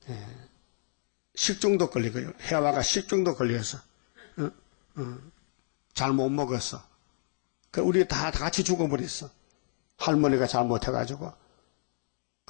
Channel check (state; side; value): silent; right; 57 dB below the other